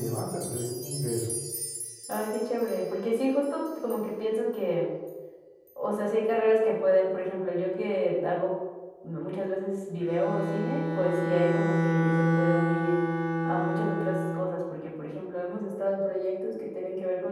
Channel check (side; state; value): both; identical; correlation 1.00